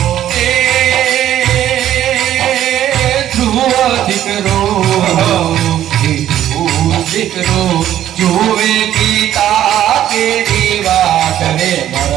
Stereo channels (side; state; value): left; quieter; 11.8 dB